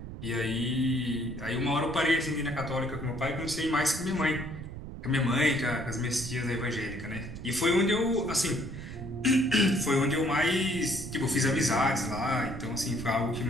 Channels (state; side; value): noise; right; rumble, 10 dB below the sound